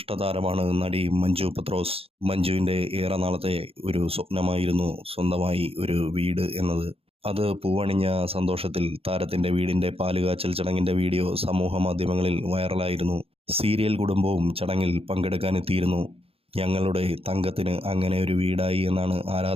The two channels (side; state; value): left; late; 0.28 ms